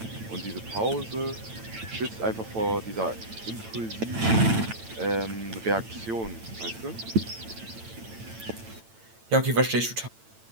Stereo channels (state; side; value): late; left; 8.9 ms